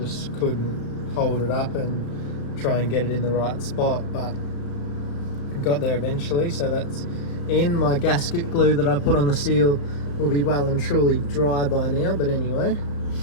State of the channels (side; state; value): right; late; 35 ms